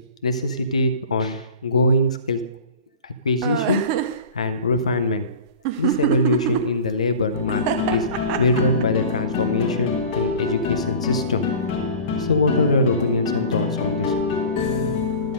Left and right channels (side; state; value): both; inverted; correlation -0.38